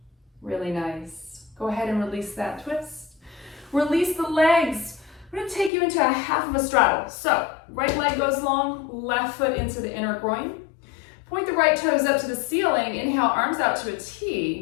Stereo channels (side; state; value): right; drops out; at 5.7 s